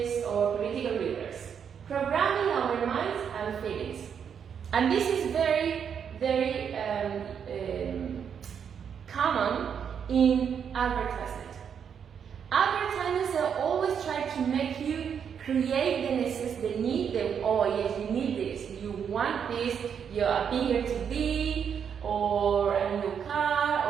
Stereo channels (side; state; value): left; quieter; 7.6 dB